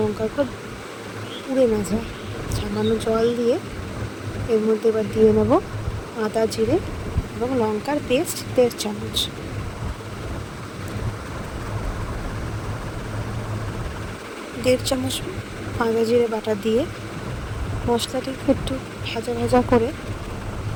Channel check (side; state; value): both; identical; correlation 1.00